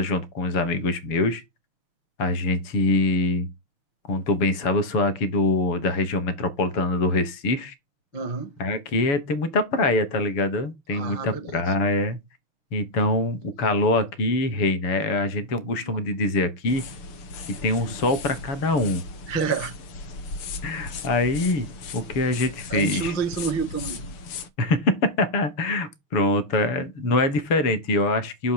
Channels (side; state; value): right; late; 6.8 ms